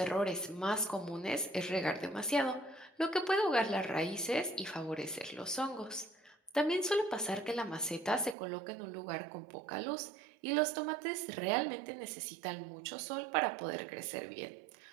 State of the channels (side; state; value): left; drops out; at 8.3 s